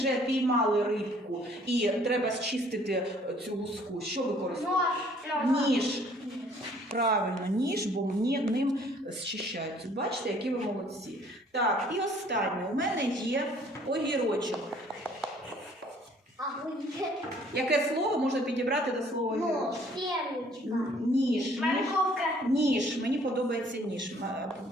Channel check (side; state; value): both; normal; correlation 0.58